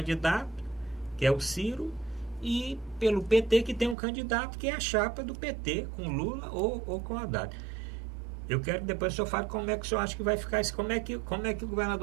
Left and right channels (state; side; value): drops out; left; at 4.0 s